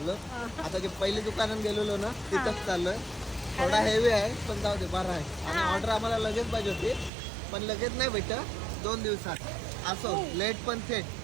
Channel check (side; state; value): left; drops out; at 7.1 s